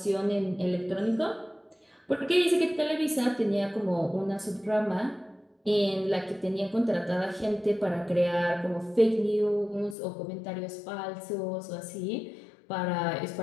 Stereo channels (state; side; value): drops out; right; at 10.0 s